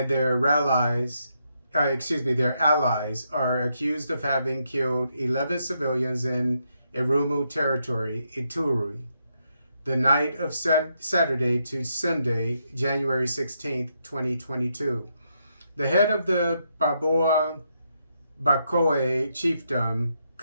their allies are accused of having killed 11 civilians in Irumu Territory, Ituri, the night of Saturday to Sunday, January 16th, 2022. The head of the Baboa Bakoe chiefdom,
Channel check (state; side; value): inverted; both; correlation -0.79